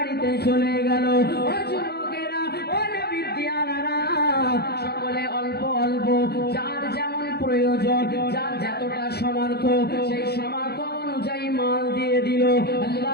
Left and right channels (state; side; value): late; right; 0.47 ms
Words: চলে গেল। ও যুবকেরা, ও নবীর দিয়ানারা, সকলে অল্প অল্প যার যেমন প্রয়োজন, যার যতটা সামর্থ্য, সেই সামর্থ্য অনুযায়ী মাল দিয়ে দিল।